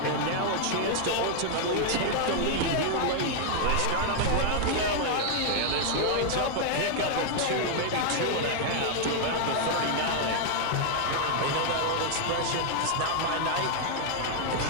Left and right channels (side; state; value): both; different; correlation 0.00